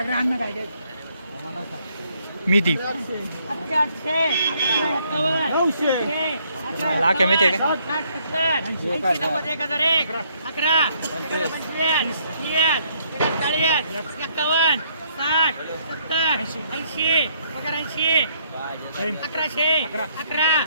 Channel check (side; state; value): both; inverted; correlation -0.68